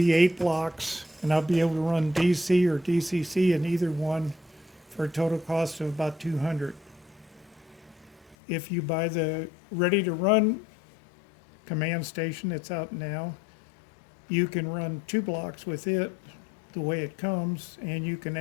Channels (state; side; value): drops out; right; at 8.3 s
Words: 8 blocks, and I'll be able to run DC or DCC in either one for a total cost of about $200. If you buy the ready to run command station that's out now, you can run 2 blocks with it the way it comes, and you can